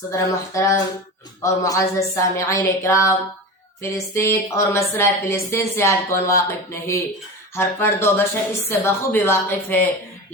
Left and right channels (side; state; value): both; normal; correlation 0.28